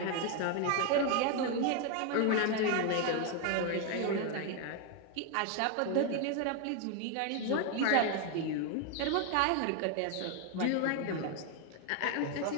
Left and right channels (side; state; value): both; different; correlation 0.01